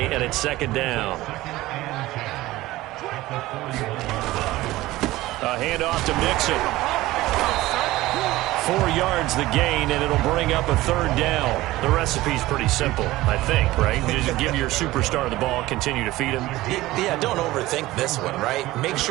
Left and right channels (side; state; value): left; quieter; 17.6 dB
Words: and it's 2nd down. A handoff to Mixon. 4 yards the gain, and it'll bring up a 3rd down. The recipe's pretty simple, I think, right? You just give your superstar the ball, continue to feed him. Yeah, don't overthink this one, right? Make